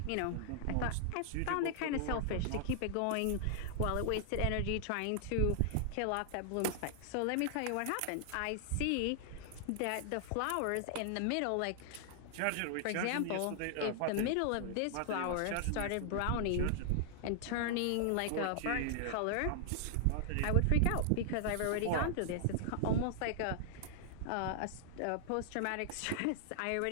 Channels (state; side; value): different; both; correlation 0.00